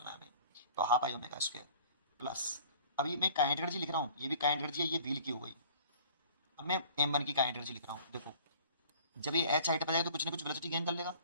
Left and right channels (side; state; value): both; inverted; correlation -0.48